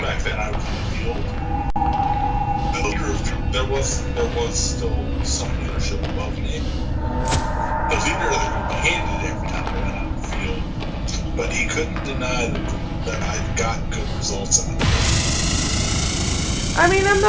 back then I was in the field. There was still some leadership above me. The leader that we handed every time I went out in the field, but he couldn't deny that I got good results out of it. I mean, I'm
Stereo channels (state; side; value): identical; both; correlation 1.00